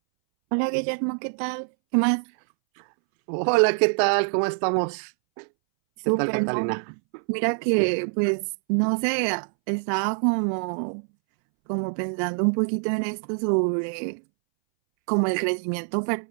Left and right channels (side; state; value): left; silent; 62 dB below the other